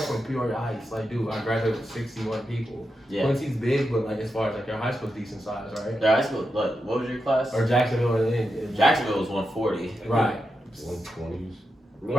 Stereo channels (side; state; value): both; normal; correlation 0.87